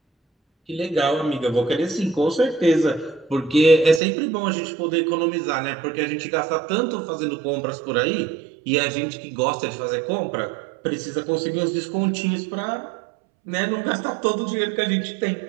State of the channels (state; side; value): drops out; left; at 4.0 s